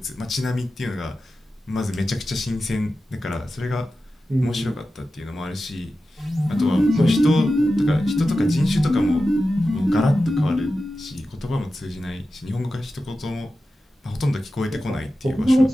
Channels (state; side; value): normal; both; correlation 0.93